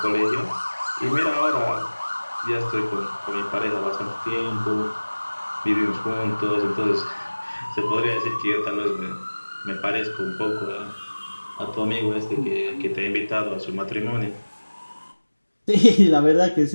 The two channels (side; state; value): both; inverted; correlation -1.00